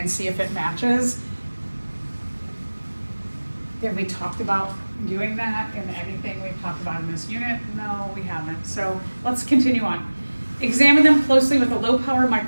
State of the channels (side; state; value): both; inverted; correlation -1.00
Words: see if it matches. Have we talked about doing that in anything we've talked about in this unit? No, we haven't. So let's continue on. Examine them closely with a low-power